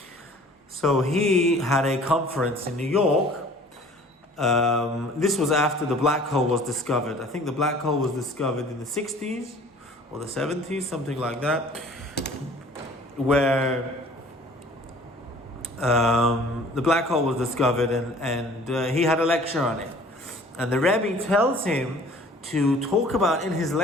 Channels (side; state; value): both; normal; correlation 0.50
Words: So he had a conference in New York. This was after the black hole was discovered. I think the black hole was discovered in the 60s or the 70s, something like that, where the black hole was discovered, and he had a lecture on it. And the Rebbe tells him to talk about in his